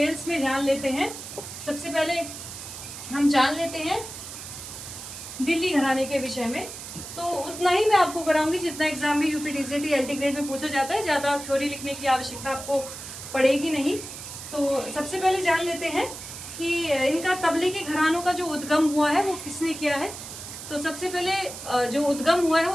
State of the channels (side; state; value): right; noise; hiss, 11 dB below the sound